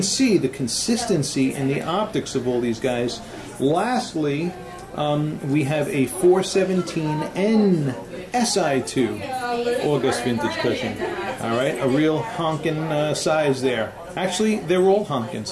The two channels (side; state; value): both; identical; correlation 1.00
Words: see the consistency and the optics of all these guys. Lastly, we have a 417N SI2 August vintage cushion. All right, a real honkin' size there. Actually, they're all honkin'